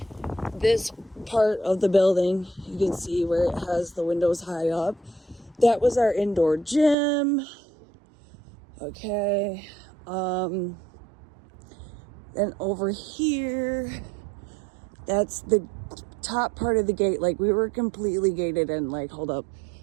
This part of the building, you can see where it has the windows high up. That was our indoor gym. Okay. And over here, that's the top part of the gate. Like, we were completely gated in. Like, hold up.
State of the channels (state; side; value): drops out; left; at 7.0 s